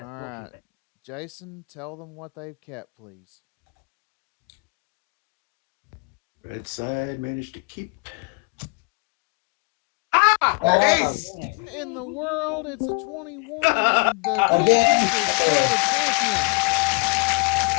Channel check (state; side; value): quieter; right; 32.2 dB